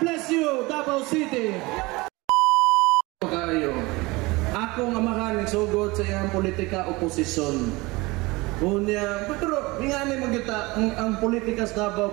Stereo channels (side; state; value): left; quieter; 22.9 dB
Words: you, Davao City! Kayo, akong amahan nagsugod sa iyang politika oposisyon. Unya, pero nga ni magita ang politika sa